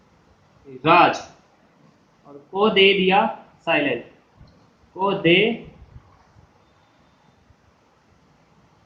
राज। और को दे दिया साइलेंट। को दे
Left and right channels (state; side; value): identical; both; correlation 1.00